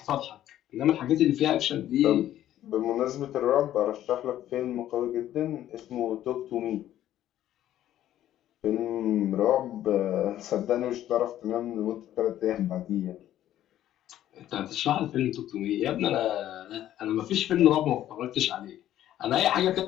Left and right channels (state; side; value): quieter; right; 12.4 dB